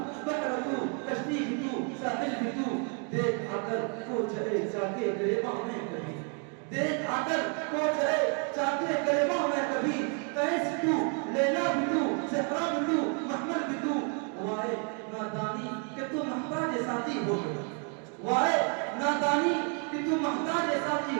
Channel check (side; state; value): left; quieter; 38.8 dB